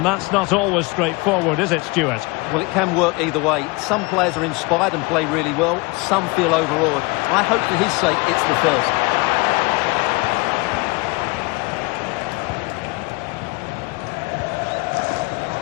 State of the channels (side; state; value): right; quieter; 25.7 dB